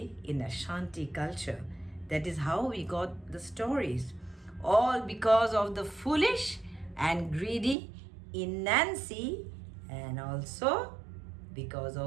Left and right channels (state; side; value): drops out; left; at 7.8 s